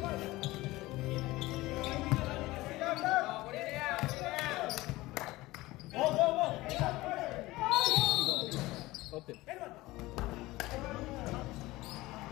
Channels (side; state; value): right; quieter; 19.2 dB